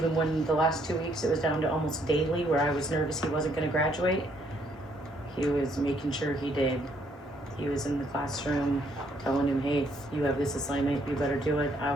when the last 2 weeks it was down to almost daily where I was nervous he wasn't gonna graduate, he was making sure he did. He was in the classroom telling him, hey, you have this assignment, you better do it. I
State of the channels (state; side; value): normal; both; correlation 0.69